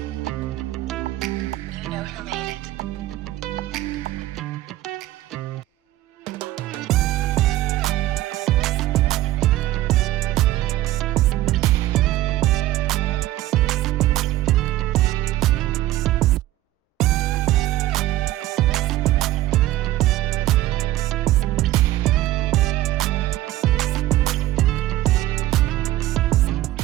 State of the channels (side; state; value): left; quieter; 15.5 dB